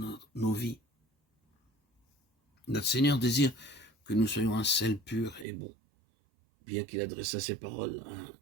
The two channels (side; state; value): left; drops out; at 5.5 s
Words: vies. Notre Seigneur désire que nous soyons un sel pur et bon. Bien qu'il adressa ses paroles à